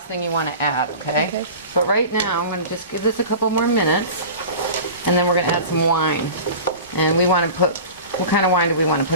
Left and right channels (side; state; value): both; inverted; correlation -0.36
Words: thing you want to add, okay? Okay. But right now, I'm going to just give this a couple more minutes, and then we're going to add some wine. And we want to put, what kind of wine do we want to put